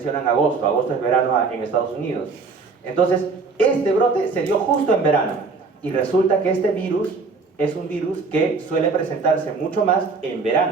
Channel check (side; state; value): left; quieter; 4.4 dB